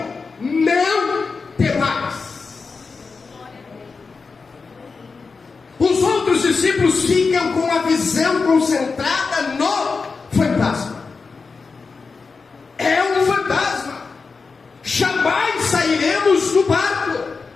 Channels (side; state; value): right; quieter; 4.6 dB